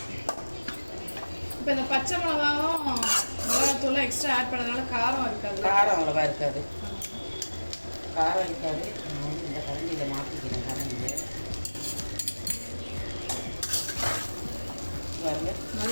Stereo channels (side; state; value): both; inverted; correlation -1.00